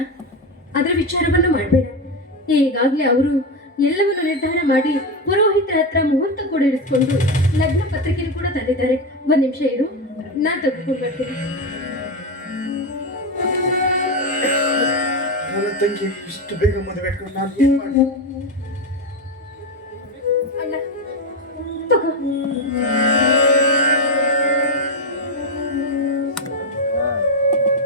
ಅದರ ವಿಚಾರವನ್ನು ಮಾಡಬೇಡ. ಈಗಾಗಲೇ ಅವರು ಎಲ್ಲವನ್ನು ನಿರ್ಧಾರ ಮಾಡಿ ಪುರೋಹಿತರ ಹತ್ರ ಮುಹೂರ್ತ ಕೂಡ ಇರಿಸ್ಕೊಂಡು ಲಗ್ನ ಪತ್ರಿಕೆ ಕೂಡ ತಂದಿದ್ದಾರೆ. ಒಂದ್ ನಿಮಿಷ ಇರು, ನಾನ್ ತೆಗೆದುಕೊಂಡು ಬರ್ತೀನಿ. ನನ್ನ ತಂಗಿ ಇಷ್ಟು ಬೇಗ ಮದುವೆ ಇಟ್ಕೊಂಡು ನಾನು ಏನ್ ಮಾಡಿ? ಅಣ್ಣ ತಗೋ.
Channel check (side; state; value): both; normal; correlation 0.12